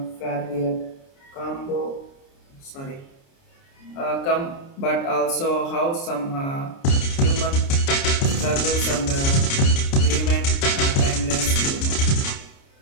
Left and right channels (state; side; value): late; right; 29 ms